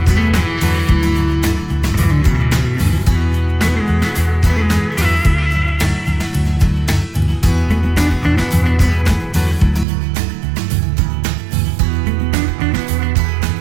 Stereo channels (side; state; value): left; drops out; at 9.9 s